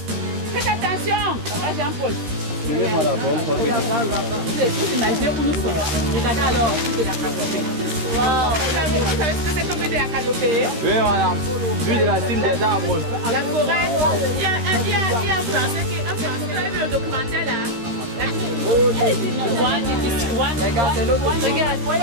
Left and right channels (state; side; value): late; left; 13 ms